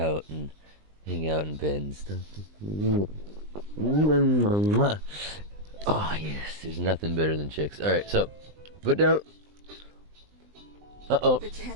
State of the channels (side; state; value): left; late; 20 ms